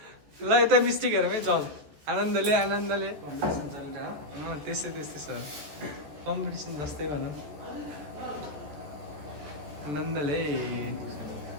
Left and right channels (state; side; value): late; left; 14 ms